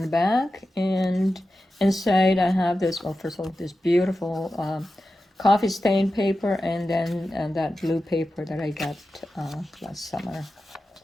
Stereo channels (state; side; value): normal; both; correlation 0.92